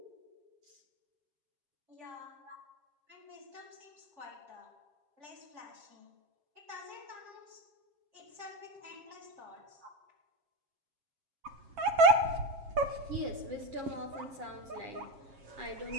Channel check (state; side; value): late; left; 7.4 ms